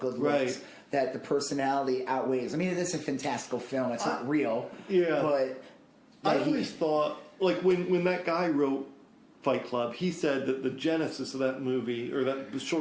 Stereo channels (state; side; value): identical; both; correlation 1.00